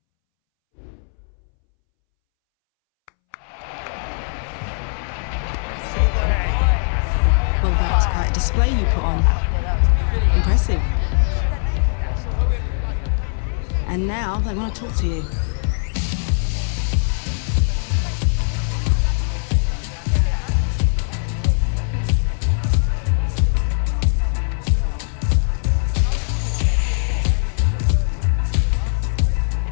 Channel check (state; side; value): silent; right; 65 dB below the other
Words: Well, that was quite a display you put on. Impressive. And now they want to talk to you.